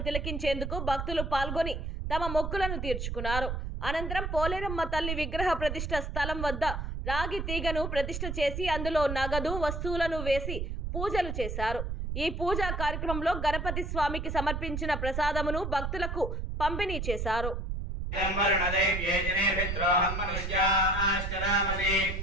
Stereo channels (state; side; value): noise; right; rumble, 3 dB below the sound